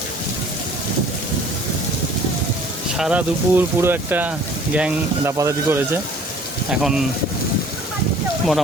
সারা দুপুর পুরো একটা গ্যাং দাপাদাপি করেছে। এখন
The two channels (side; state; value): both; normal; correlation 0.52